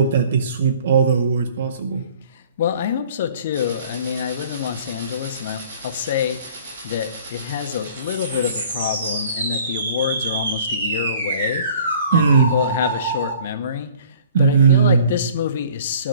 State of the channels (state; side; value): inverted; both; correlation -0.52